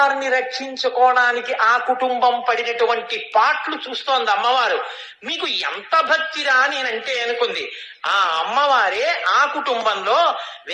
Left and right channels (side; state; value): both; identical; correlation 1.00